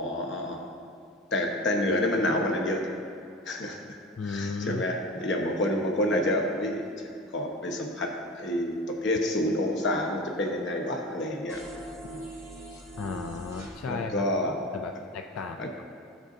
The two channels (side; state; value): both; normal; correlation 0.31